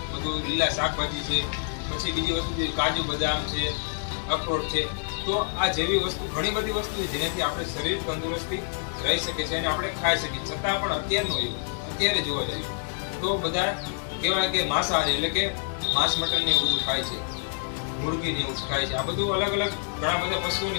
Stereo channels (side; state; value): right; silent; digital silence